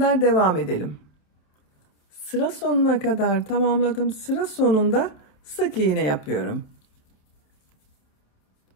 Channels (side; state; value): right; late; 28 ms